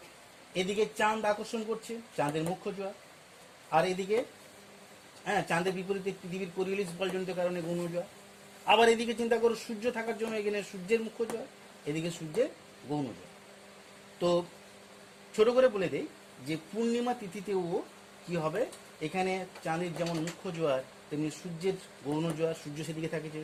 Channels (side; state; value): both; identical; correlation 1.00